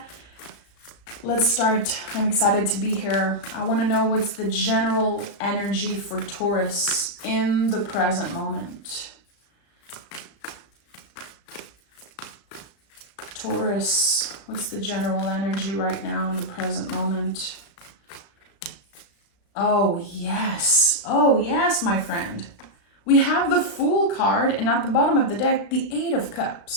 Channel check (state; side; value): late; right; 35 ms